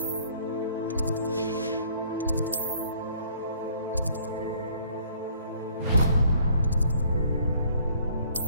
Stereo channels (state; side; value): inverted; both; correlation -0.59